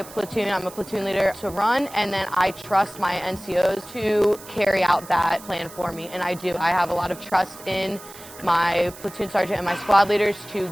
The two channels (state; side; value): noise; right; hiss, 17 dB below the sound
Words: platoon, I'm a platoon leader, to run, and then I trust my NCOs to carry out that plan for me, and I do. I have a lot of trust in my platoon sergeant and my squad leaders to